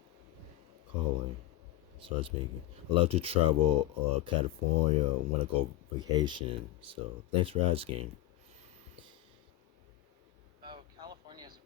Calling. Start speaking. I love to travel California. Want to go vacation. So thanks for asking. Oh, California is a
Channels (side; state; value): right; quieter; 15.5 dB